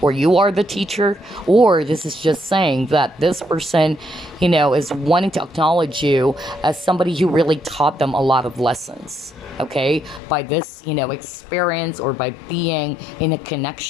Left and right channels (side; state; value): right; drops out; at 10.2 s